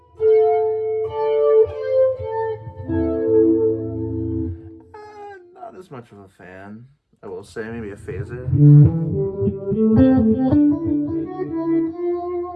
I will say, maybe a phaser.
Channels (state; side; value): identical; both; correlation 1.00